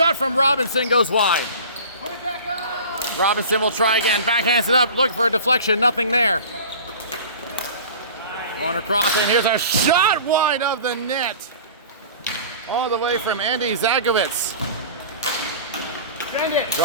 from Robinson goes wide. Robinson will try again. Backhands it up. Looking for a deflection. Nothing there. Going across, and here's a shot wide of the net. All the way from Andy Zagowitz.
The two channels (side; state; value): both; inverted; correlation -0.39